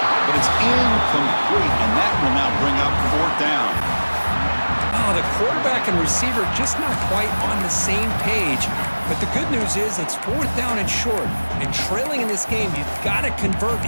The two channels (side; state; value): both; inverted; correlation -1.00